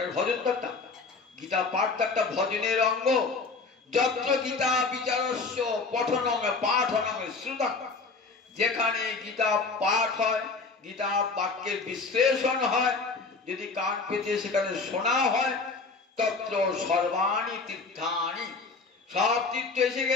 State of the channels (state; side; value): quieter; right; 4.2 dB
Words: ভজন তো, একটা গীতা পাঠ তো একটা ভজনের অঙ্গ। যত্র গীতা বিচারস্য পঠনং পাঠনং শ্রুতং, যেখানে গীতা পাঠ হয়, গীতা বাক্যের বিশ্লেষণ হয়, যদি কান পেতে সেখানে শোনা হয়, তত্র সর্বাণি তীর্থানি, সব তীর্থ এসে